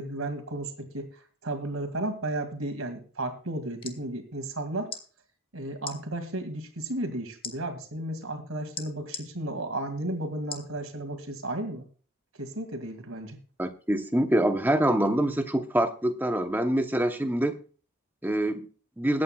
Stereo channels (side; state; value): both; normal; correlation 0.67